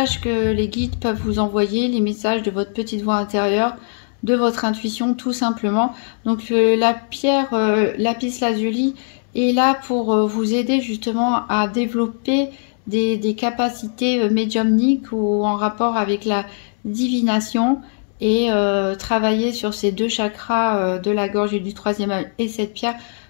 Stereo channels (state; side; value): silent; right; digital silence